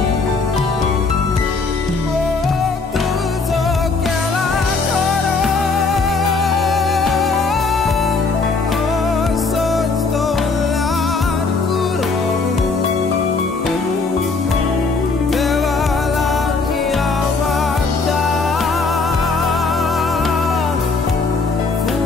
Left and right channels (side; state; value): right; quieter; 4.2 dB